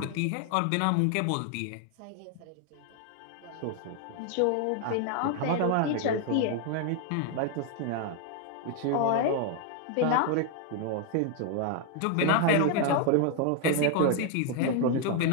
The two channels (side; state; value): both; different; correlation 0.00